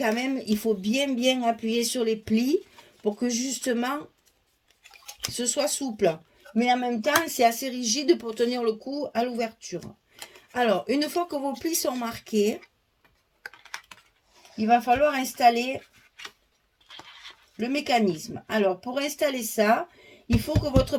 même, il faut bien appuyer sur les plis pour que, justement, ce soit souple. Mais en même temps, c'est assez rigide pour tenir le coup à l'ouverture. Alors, une fois que vos plis sont marqués, il va falloir installer le mécanisme. Alors, pour installer ça, il faut que votre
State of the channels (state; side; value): identical; both; correlation 1.00